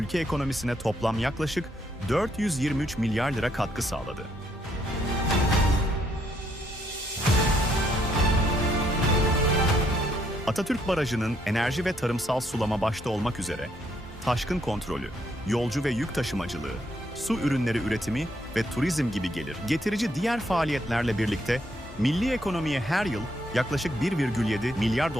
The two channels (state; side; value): normal; both; correlation 0.72